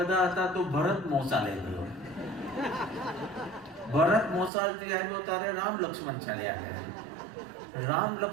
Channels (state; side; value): drops out; left; at 4.5 s